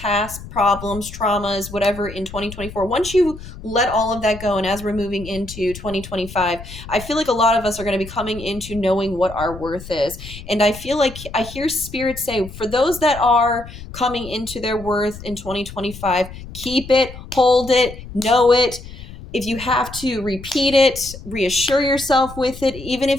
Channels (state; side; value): noise; left; rumble, 14 dB below the sound